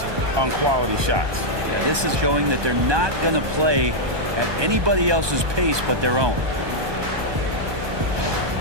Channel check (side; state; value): left; late; 1.2 ms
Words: on quality shots. Yeah, this is showing that they're not going to play at anybody else's pace but their own.